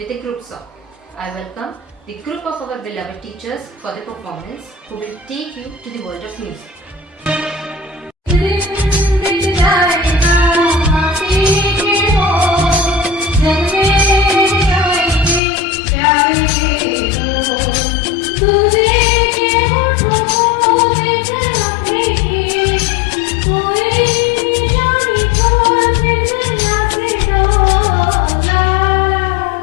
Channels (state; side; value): drops out; right; at 15.4 s